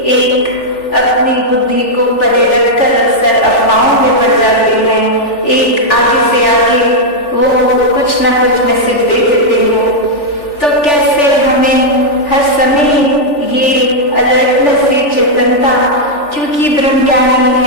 एक अपनी बुद्धि को परे रखकर अक्सर अफवाहों में पड़ जाते हैं। एक आगे से आगे वो कुछ ना कुछ मैसेज दे देते हैं। तो कैसे हमें हर समय ये अलर्टनेस, ये चेतनता, क्योंकि ब्रह्मज्ञानी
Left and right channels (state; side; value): late; right; 3.4 ms